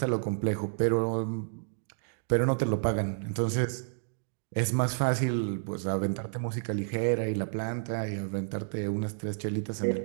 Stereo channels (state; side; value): silent; left; digital silence